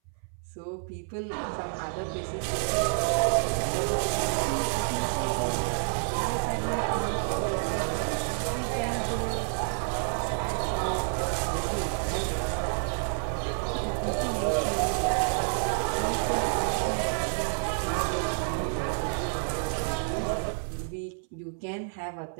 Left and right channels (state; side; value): silent; left; 59 dB below the other